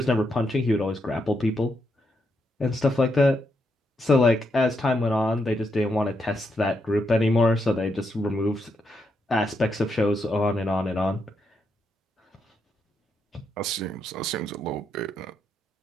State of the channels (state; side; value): normal; both; correlation 0.80